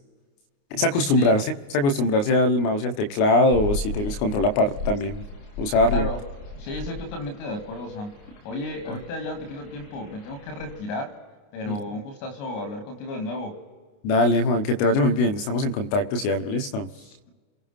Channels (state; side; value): late; right; 29 ms